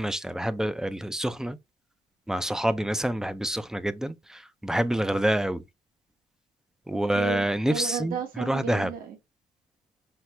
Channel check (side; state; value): both; normal; correlation 0.89